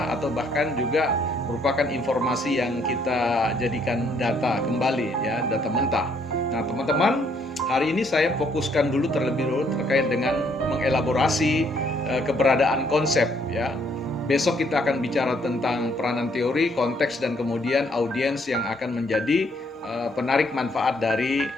atau bahkan juga merupakan informasi yang kita jadikan data kembali, ya, data mentah. Nah, teman-teman, hari ini saya fokuskan terlebih dulu terkait dengan mengelaborasi keberadaan konsep, ya. Besok kita akan bicara tentang peranan teori, konteks, dan kemudian audiens yang akan menjadi penarik manfaat dari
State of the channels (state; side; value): normal; both; correlation 0.68